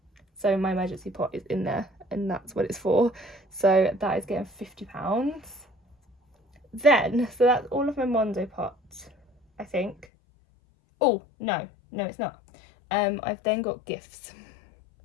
my emergency pot is in there and that's what it's for. So that is getting £50. Then, so that's all of my Monzo pots, I think. Oh, no, it's not. I've then got gifts,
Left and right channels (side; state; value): right; drops out; at 10.1 s